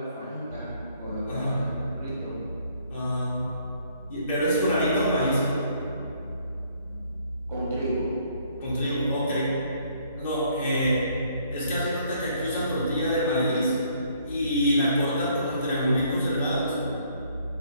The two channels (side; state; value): both; inverted; correlation -0.65